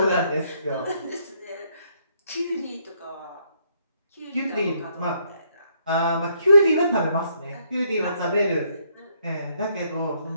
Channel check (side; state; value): both; inverted; correlation -0.71